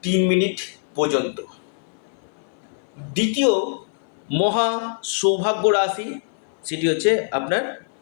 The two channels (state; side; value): silent; right; 57 dB below the other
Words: 3 মিনিট পর্যন্ত। দ্বিতীয় মহা সৌভাগ্য রাশি সেটি হচ্ছে আপনার